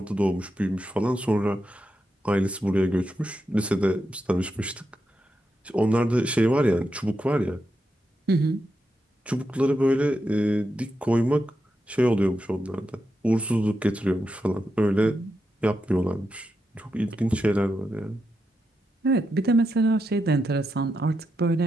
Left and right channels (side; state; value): both; normal; correlation 0.86